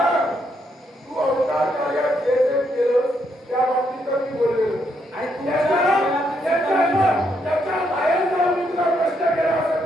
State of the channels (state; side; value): normal; both; correlation 0.76